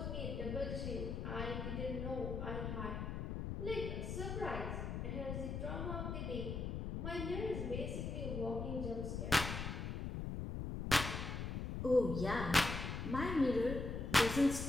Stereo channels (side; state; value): left; noise; rumble, 3 dB below the sound